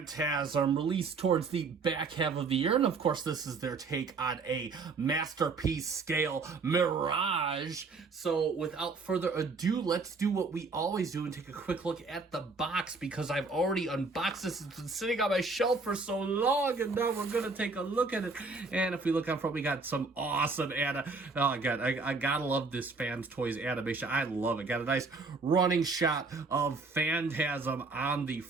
released towards the back half of the year. And of course, this is their take on a masterpiece scale Mirage. So without further ado, let's do what we always do and take a quick look at the box, because I've already unboxed this. It's been sitting on my shelf for so long, and now we're going to take a look at it. And if we look out front, we got some awesome oh god, I gotta love this Fans Toys animation. I love it. Got a nice running shot of Phantasm on the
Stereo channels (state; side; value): quieter; left; 4.1 dB